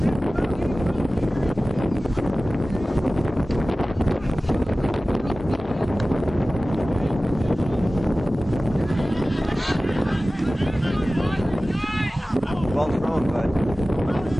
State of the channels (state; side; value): normal; both; correlation 0.97